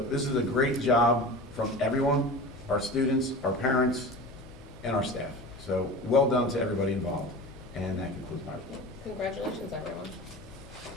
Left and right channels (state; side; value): noise; left; hum, 22 dB below the sound